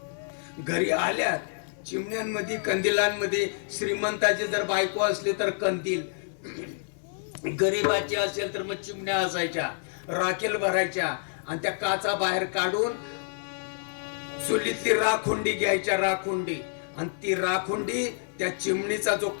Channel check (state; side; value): silent; right; 59 dB below the other